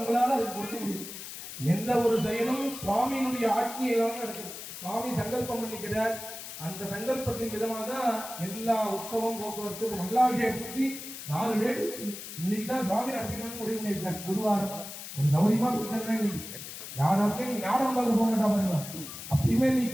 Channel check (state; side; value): noise; left; hiss, 10 dB below the sound